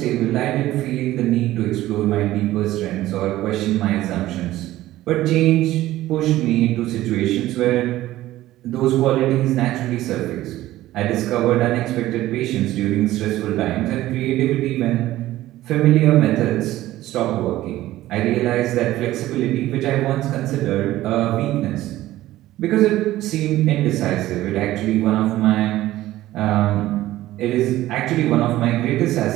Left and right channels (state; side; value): quieter; left; 15.4 dB